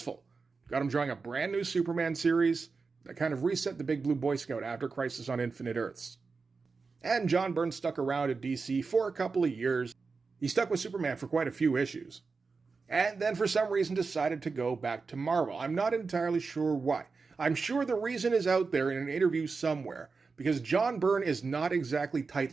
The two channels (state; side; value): quieter; left; 4.5 dB